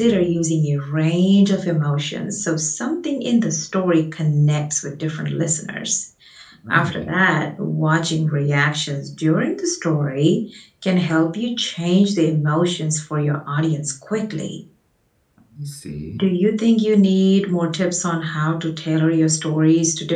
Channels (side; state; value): both; identical; correlation 1.00